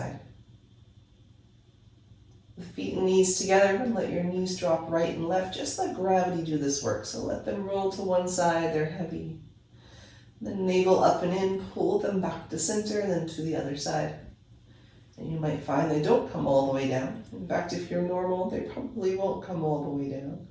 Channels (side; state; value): both; identical; correlation 1.00